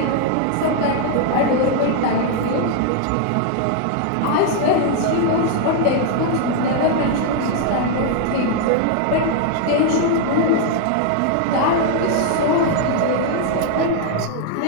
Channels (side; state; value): both; different; correlation 0.00